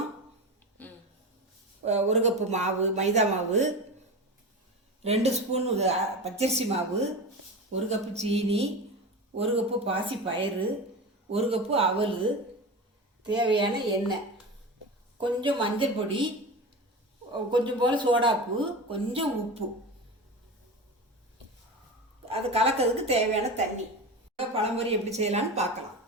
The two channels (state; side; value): normal; both; correlation 0.26